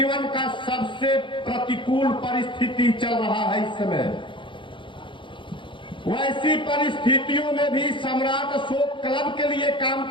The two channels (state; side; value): late; right; 0.24 ms